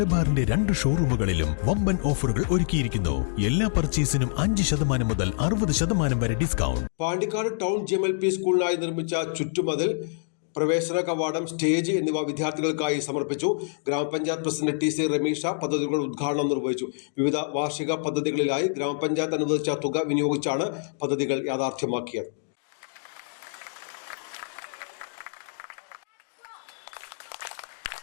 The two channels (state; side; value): silent; right; digital silence